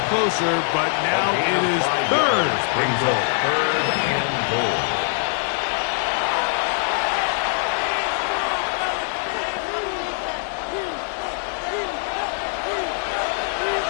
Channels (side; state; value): right; silent; 60 dB below the other